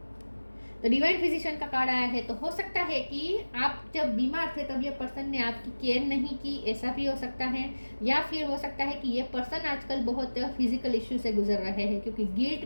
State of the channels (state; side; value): inverted; both; correlation -1.00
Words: तो डिवाइन फिजिशियन का कार्ड आया है, तो हो सकता है कि आप जब बीमार थे तब ये पर्सन ने आपकी केयर नहीं की, ऐसा भी हो सकता है। या फिर हो सकता है कि ये पर्सन आजकल बहुत फिजिकल इश्यू से गुजर रहे हैं, क्योंकि